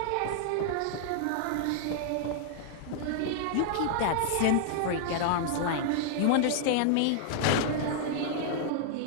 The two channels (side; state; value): both; different; correlation -0.01